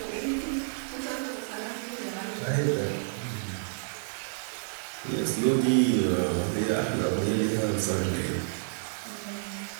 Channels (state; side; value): silent; left; 58 dB below the other